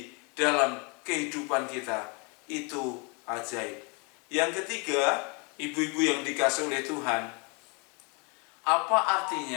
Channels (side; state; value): right; quieter; 32.4 dB